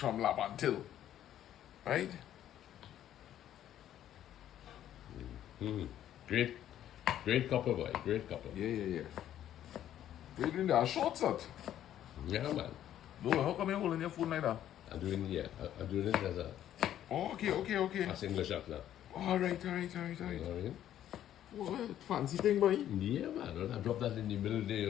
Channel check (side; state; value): right; quieter; 11.4 dB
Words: Labantil. Right? Great couple, boy. Great couple. Yeah. You're doing that short set. Yeah, man. No, how come you're holding your phone like that? I'm doing it as a Oh, okay. as English up now. Alright. You know what I mean? What fancy thing, boy? Yeah, man. I drop that in the middle there,